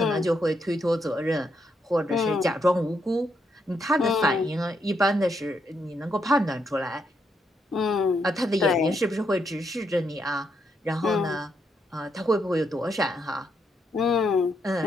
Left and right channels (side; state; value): both; normal; correlation 0.78